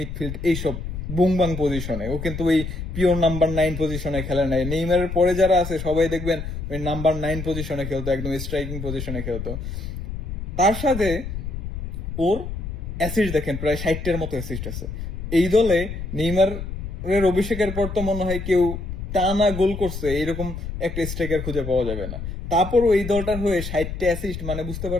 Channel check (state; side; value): noise; left; rumble, 7 dB below the sound